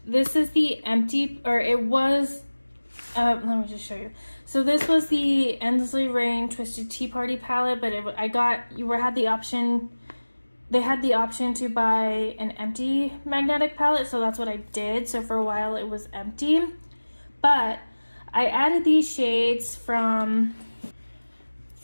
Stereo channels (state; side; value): inverted; both; correlation -1.00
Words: This is the empty, or it was, let me just show you. So this was the Endlessly Rain Twisted Tea Party palette, but they had the option to buy an empty magnetic palette, so that's what I did. So for a while it was empty, but I added these shades from